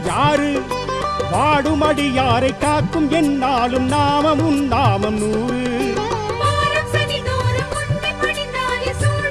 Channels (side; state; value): both; identical; correlation 1.00